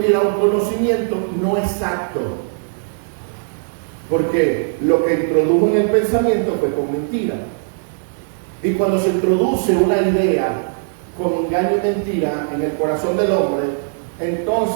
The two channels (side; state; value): left; silent; 66 dB below the other